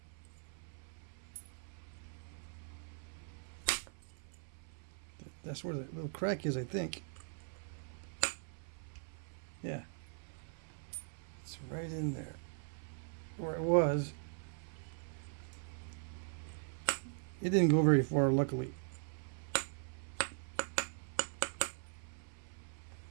That's where the little crack is, I think. Yeah. It's right in there. Where it was. It didn't go very far, luckily.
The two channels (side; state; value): left; silent; 50 dB below the other